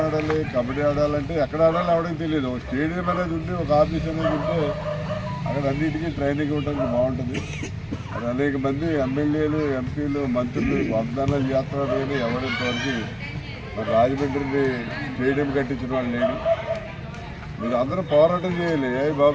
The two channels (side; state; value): both; identical; correlation 1.00